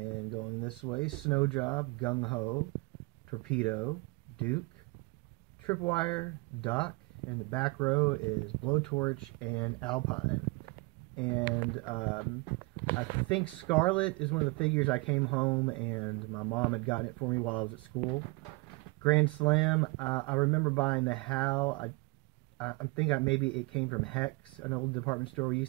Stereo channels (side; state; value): left; quieter; 26.4 dB